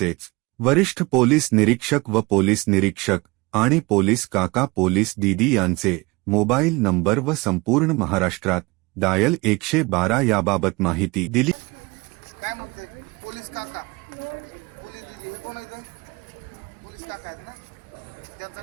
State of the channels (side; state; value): left; quieter; 24.6 dB